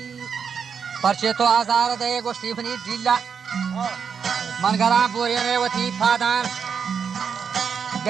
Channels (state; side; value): quieter; left; 6.6 dB